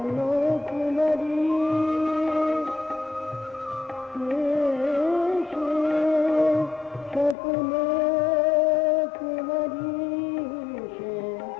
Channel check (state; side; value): drops out; right; at 7.4 s